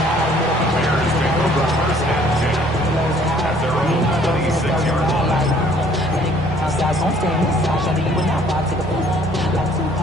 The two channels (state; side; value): normal; both; correlation 0.59